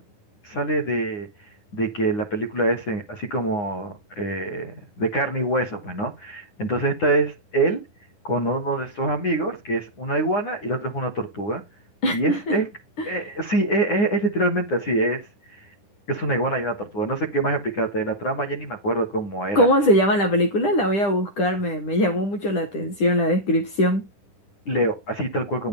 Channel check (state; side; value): late; right; 10 ms